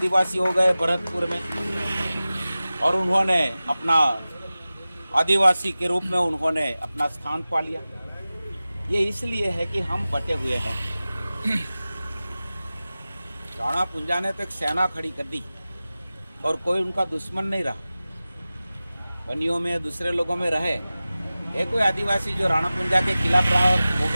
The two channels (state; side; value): inverted; both; correlation -0.96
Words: हो गए भरतपुर में, और उन्होंने अपना आदिवासी के रूप में उन्होंने अपना स्थान पा लिया। ये इसलिए है कि हम बटे हुए हैं। राणा पुंजा ने तो एक सेना खड़ी कर दी और कोई उनका दुश्मन नहीं रहा। बनियों में दूसरे लोगों में रहे, एक कोई आदिवासी जो राणा पुंजा के खिलाफ रहा और